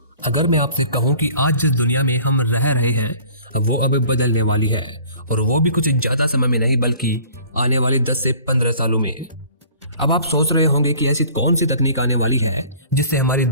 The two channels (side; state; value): both; inverted; correlation -0.49